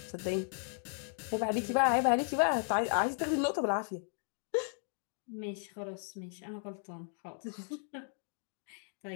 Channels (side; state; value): right; silent; 54 dB below the other